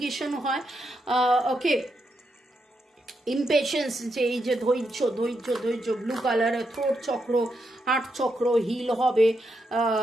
হয়। ওকে, ইমপেশেন্স, যে এই যে ধৈর্য, ব্লু কালারের থ্রোট চক্র, হার্ট চক্র হিল হবে,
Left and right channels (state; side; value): normal; both; correlation 0.83